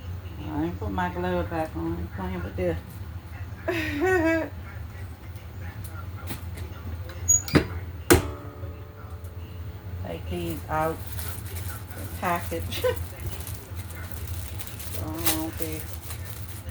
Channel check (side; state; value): both; identical; correlation 1.00